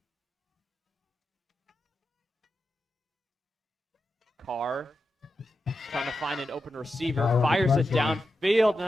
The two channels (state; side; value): normal; both; correlation 0.90